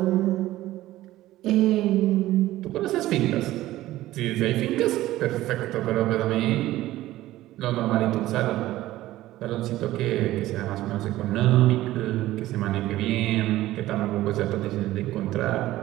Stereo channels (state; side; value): quieter; left; 15.7 dB